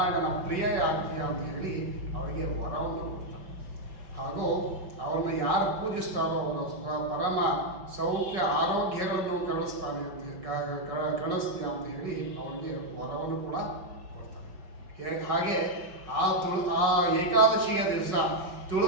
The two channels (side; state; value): left; late; 5.3 ms